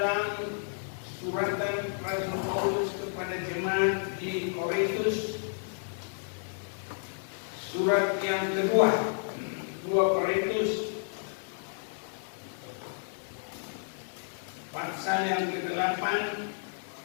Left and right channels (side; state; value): right; silent; digital silence